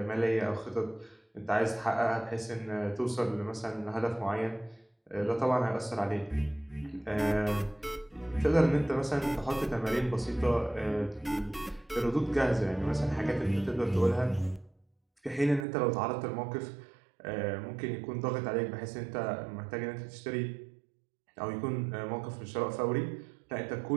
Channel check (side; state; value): left; drops out; at 15.7 s